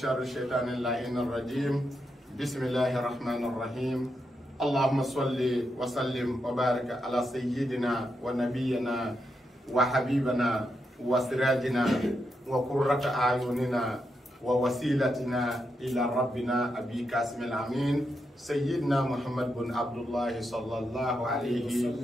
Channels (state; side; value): normal; both; correlation 0.84